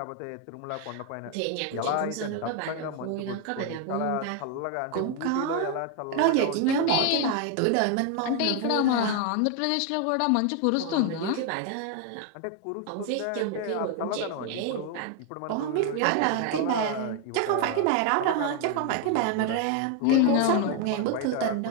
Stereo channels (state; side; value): different; both; correlation 0.01